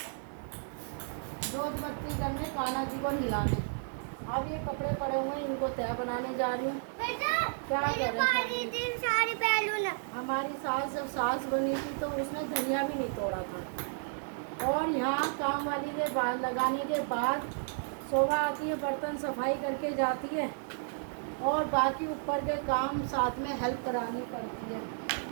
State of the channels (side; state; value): left; silent; digital silence